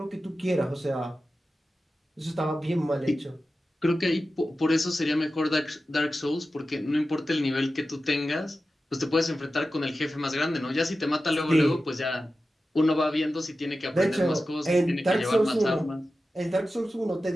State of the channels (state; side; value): normal; both; correlation 0.93